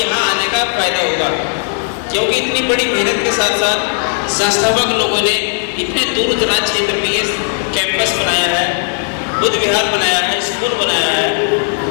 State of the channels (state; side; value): silent; right; 62 dB below the other